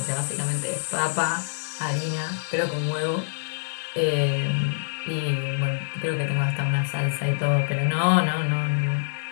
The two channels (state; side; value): silent; right; digital silence